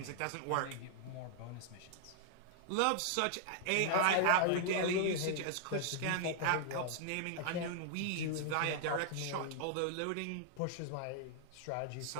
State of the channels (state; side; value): different; both; correlation 0.00